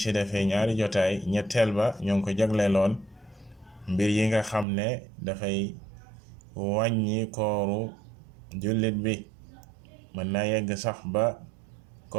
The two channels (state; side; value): drops out; left; at 4.7 s